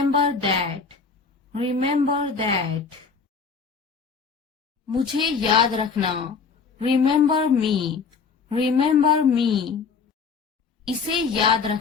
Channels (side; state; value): right; quieter; 5.3 dB